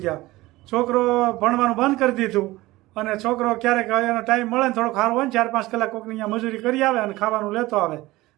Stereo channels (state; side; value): quieter; left; 19.0 dB